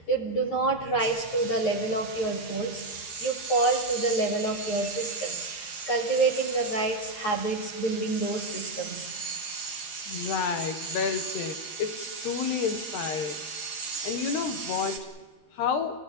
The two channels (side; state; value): right; late; 13 ms